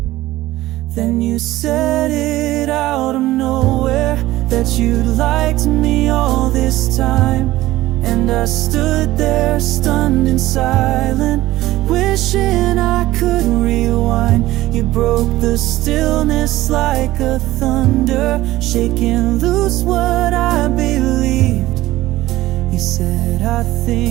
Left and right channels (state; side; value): quieter; left; 16.6 dB